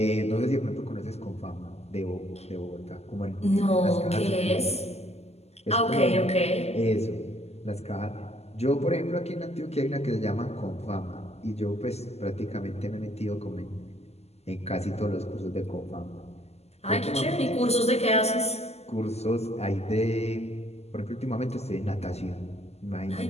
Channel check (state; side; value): late; right; 0.30 ms